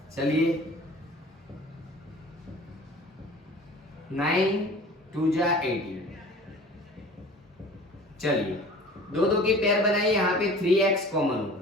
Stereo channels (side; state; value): both; normal; correlation 0.44